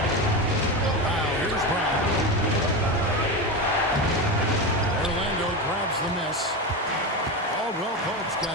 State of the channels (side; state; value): both; normal; correlation 0.19